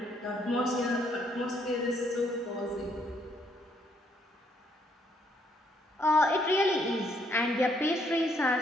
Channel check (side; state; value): both; normal; correlation 0.70